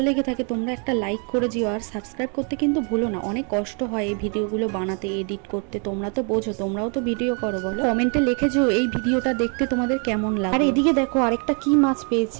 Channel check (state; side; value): quieter; left; 38.0 dB